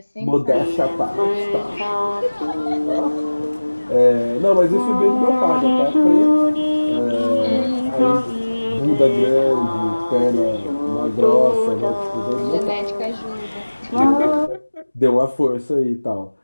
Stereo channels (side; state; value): both; inverted; correlation -1.00